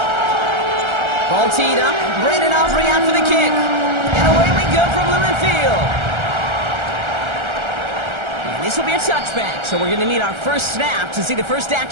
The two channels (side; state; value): left; late; 1.3 ms